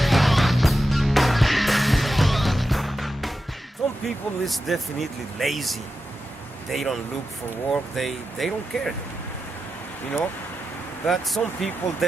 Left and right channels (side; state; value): both; normal; correlation 0.90